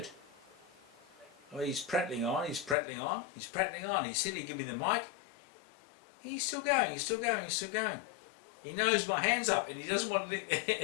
Oh, he's prattling on, he's prattling on, he's prattling on. He said he'd give me the mic. He's still going, he's still going, he's still going. He knows my hand's up and he doesn't want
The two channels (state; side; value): drops out; right; at 2.8 s